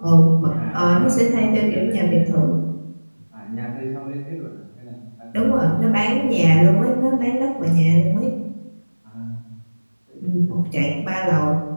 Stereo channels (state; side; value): inverted; both; correlation -1.00